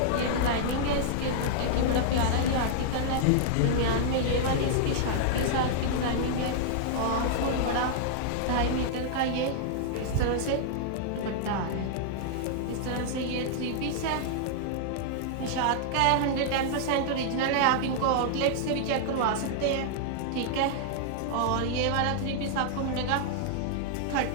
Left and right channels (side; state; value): both; different; correlation -0.01